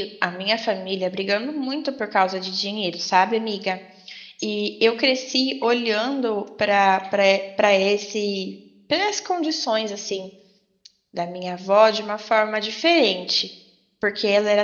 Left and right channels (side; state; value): both; identical; correlation 1.00